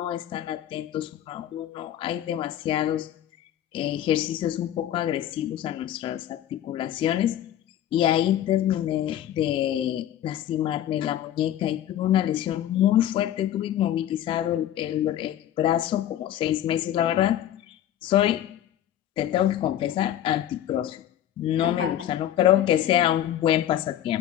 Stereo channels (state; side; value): quieter; right; 11.5 dB